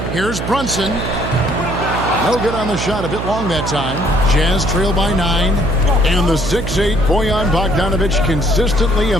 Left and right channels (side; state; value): right; noise; hum, 5 dB below the sound